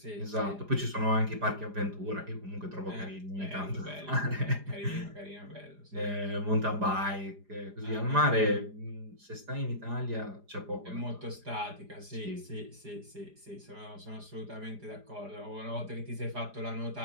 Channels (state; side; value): late; left; 4.9 ms